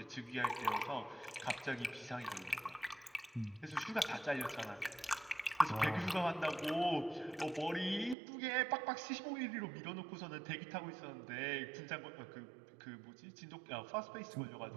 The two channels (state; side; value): drops out; left; at 8.2 s